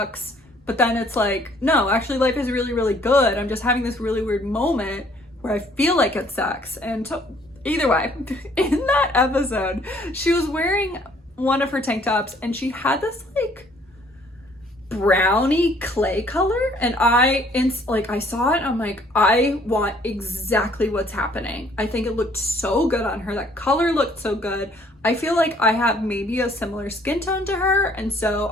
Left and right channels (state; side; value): normal; both; correlation 0.60